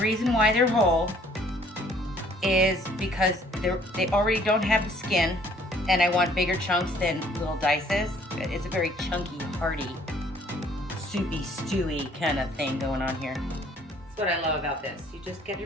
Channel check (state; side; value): normal; both; correlation 0.59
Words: why they're whole is because they already don't have the skin, and I want bigger chunks than little dices. It's a very chunky, hearty, soupy, stewy kind of thing going on here. That's what I love about this. You just get